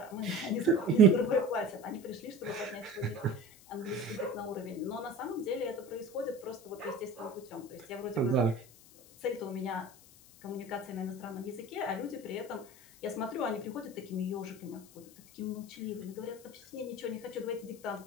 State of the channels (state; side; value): noise; left; hiss, 22 dB below the sound